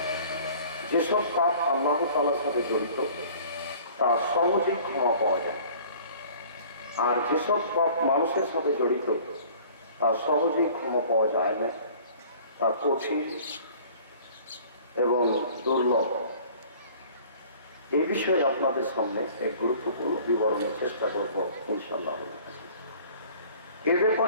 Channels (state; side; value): inverted; both; correlation -0.49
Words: যেসব পাপ আল্লাহ তাআলার সাথে জড়িত তা সহজেই ক্ষমা পাওয়া যায়, আর যেসব পাপ মানুষের সাথে জড়িত তা সহজেই ক্ষমা পাওয়া যায় না, তা কঠিন এবং দুর্লভ। এই বিষয়ে আপনাদের সামনে এক গুরুত্বপূর্ণ বিবরণের চেষ্টা করব ইনশাআল্লাহ। এর